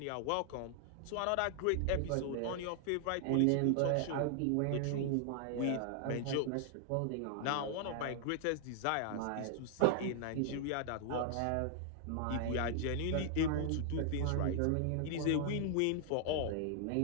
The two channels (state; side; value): different; both; correlation 0.00